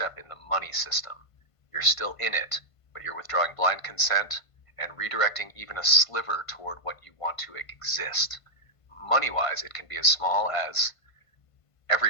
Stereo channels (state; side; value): late; right; 1.5 ms